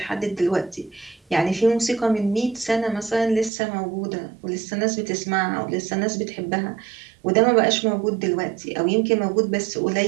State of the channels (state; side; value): drops out; left; at 3.5 s